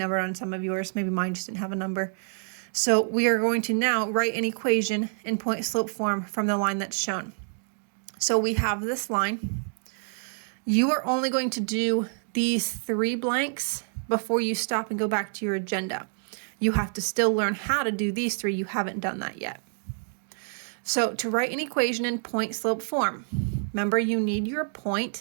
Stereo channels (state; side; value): silent; left; digital silence